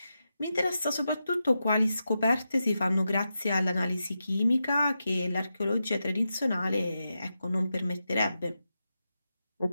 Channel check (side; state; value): both; inverted; correlation -0.88